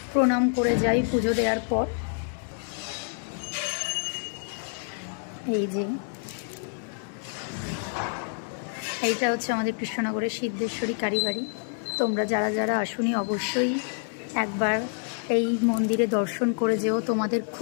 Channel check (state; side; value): silent; right; 60 dB below the other